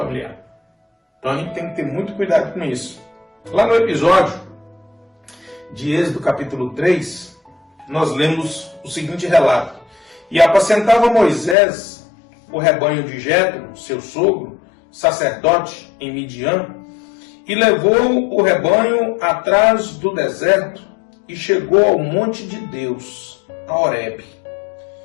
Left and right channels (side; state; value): right; drops out; at 11.6 s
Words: Então a gente tem que ter muito cuidado com isso. Lá no episódio de Êxodo capítulo 3, nós lemos o seguinte relato. E apacentava Moisés o rebanho de Jetro, seu sogro, sacerdote em Midian, e levou o rebanho atrás do deserto e chegou ao monte de Deus, a Horebe.